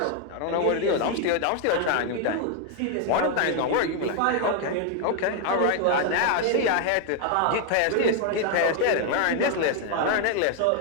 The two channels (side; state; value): both; different; correlation 0.00